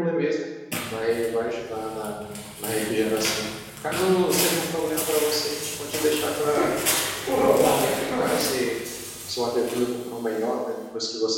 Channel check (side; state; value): both; identical; correlation 1.00